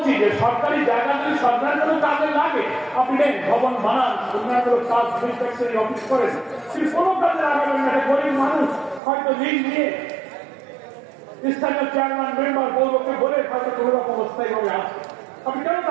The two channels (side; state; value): left; drops out; at 9.0 s